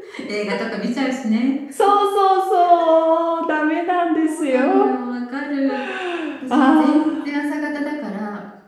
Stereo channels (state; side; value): identical; both; correlation 1.00